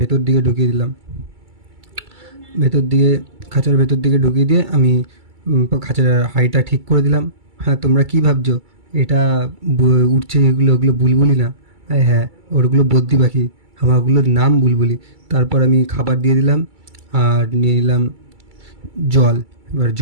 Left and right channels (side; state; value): left; late; 2.3 ms